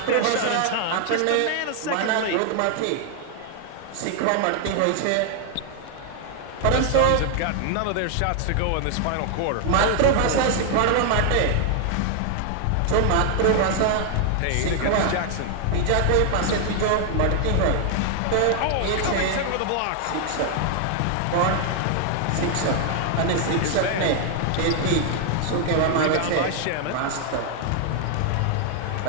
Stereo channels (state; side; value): different; both; correlation 0.00